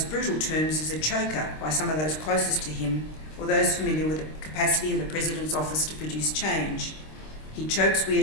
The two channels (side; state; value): right; late; 26 ms